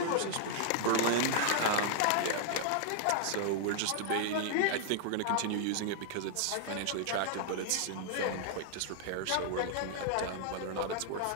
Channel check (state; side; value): different; both; correlation 0.00